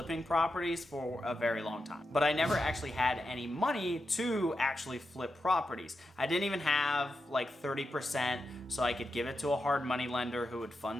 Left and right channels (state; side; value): normal; both; correlation 0.88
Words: properties for a very long time, but I never actually had any money to actually flip properties. I didn't even have like 30% so I could give it to a hard money lender who would